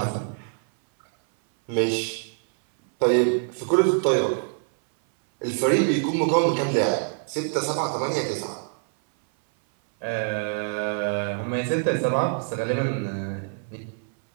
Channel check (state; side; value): silent; left; 59 dB below the other